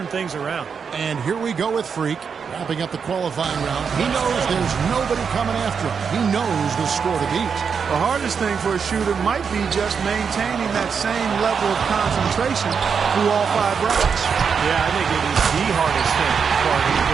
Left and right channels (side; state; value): left; quieter; 6.3 dB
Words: things around. And here we go with Freak, wrapping up the qualifying round. He knows there's nobody coming after him. He knows the score to beat. The hardest thing for a shooter might be just maintaining that same level of concentration through all 5 racks. Yeah, I think it is the hardest thing,